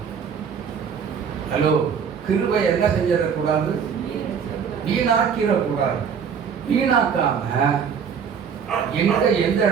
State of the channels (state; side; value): quieter; left; 7.0 dB